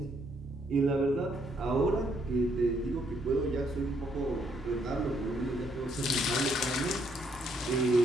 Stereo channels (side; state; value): both; normal; correlation 0.71